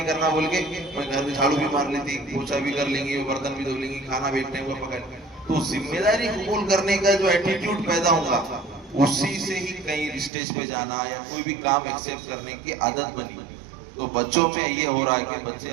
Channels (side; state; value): left; drops out; at 10.3 s